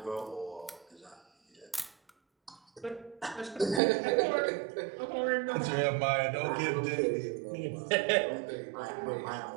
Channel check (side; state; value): left; drops out; at 3.8 s